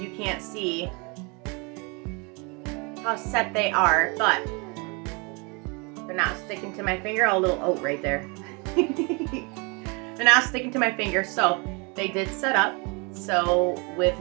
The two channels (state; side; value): quieter; left; 30.6 dB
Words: can't see how set they are, but they're not sticking to my finger. A little oat right there. They're not sticking to my finger, so they did set up. So with